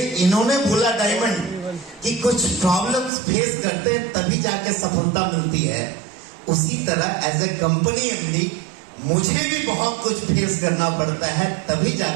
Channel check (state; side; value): drops out; left; at 3.1 s